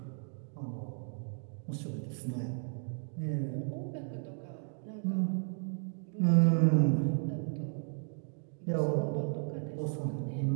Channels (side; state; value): left; silent; 55 dB below the other